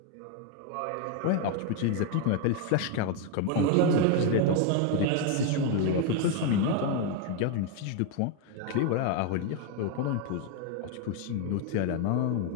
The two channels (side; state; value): both; different; correlation 0.01